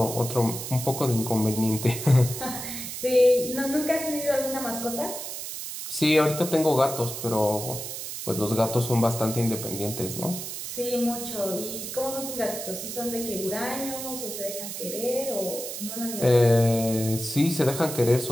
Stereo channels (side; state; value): right; noise; hiss, 7 dB below the sound